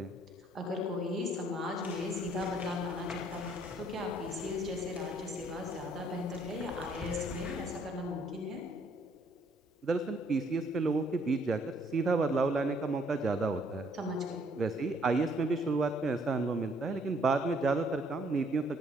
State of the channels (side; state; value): both; normal; correlation 0.65